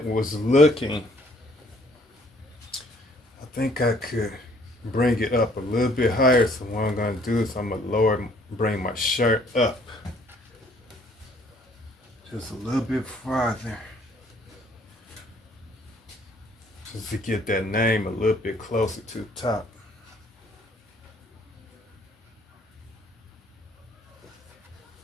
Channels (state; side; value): normal; both; correlation 0.62